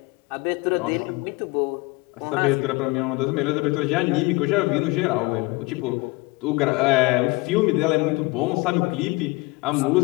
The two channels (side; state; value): right; quieter; 24.3 dB